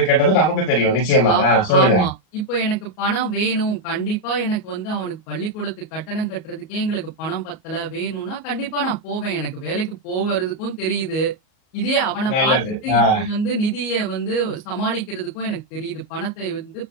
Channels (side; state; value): right; late; 38 ms